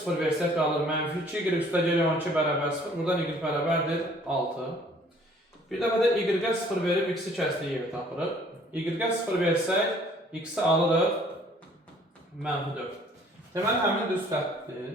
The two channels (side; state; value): both; normal; correlation 0.57